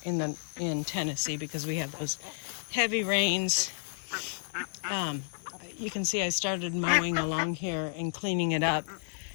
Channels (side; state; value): right; silent; digital silence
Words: in Tennessee because we have those heavy rains. You can see I started mowing along here and cleaning it up.